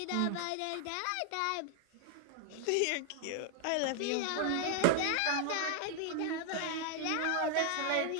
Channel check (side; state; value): both; different; correlation 0.00